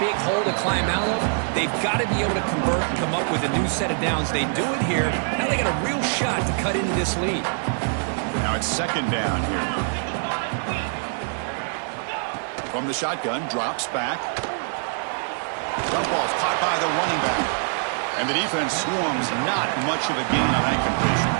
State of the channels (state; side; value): silent; left; 62 dB below the other